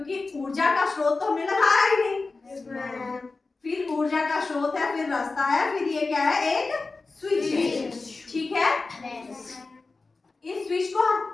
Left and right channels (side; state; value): right; quieter; 3.8 dB